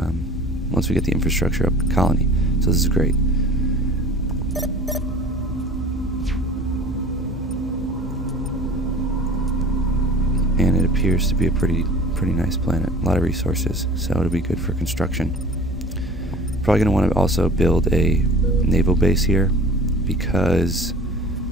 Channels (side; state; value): both; normal; correlation 0.44